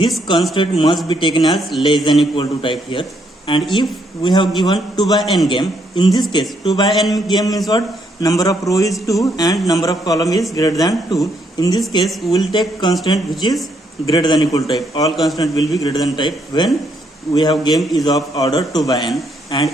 constant must be taken as less than equal to type here. And if we have given 2 by n game, in this case 2 by n game means what? Number of row is 2 and number of column is greater than 2. In this case we will take constant which is greater than equal to type. All constant will be greater than type when we have game is of order 2 by n.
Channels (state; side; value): normal; both; correlation 0.73